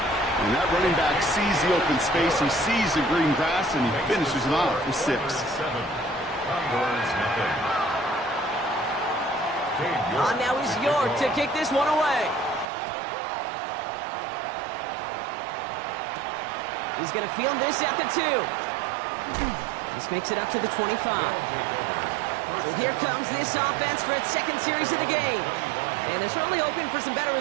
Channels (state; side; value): drops out; left; at 12.7 s